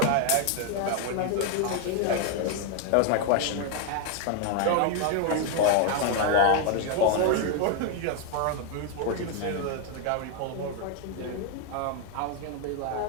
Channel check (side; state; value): both; different; correlation 0.01